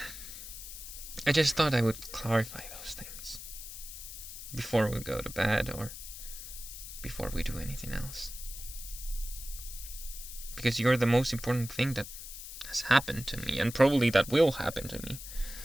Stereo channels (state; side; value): noise; left; hiss, 11 dB below the sound